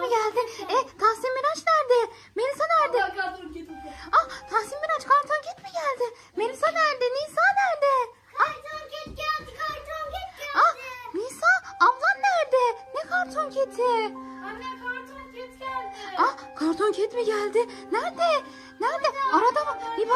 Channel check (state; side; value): identical; both; correlation 1.00